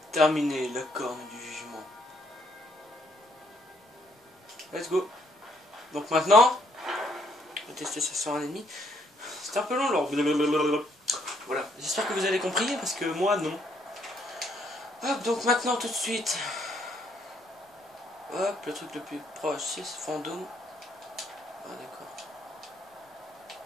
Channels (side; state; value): both; normal; correlation 0.70